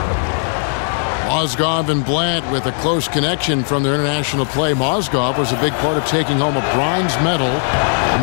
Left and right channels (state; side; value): silent; right; digital silence